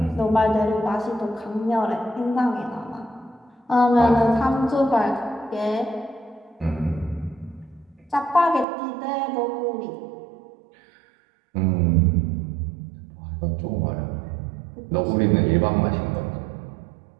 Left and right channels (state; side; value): drops out; left; at 8.7 s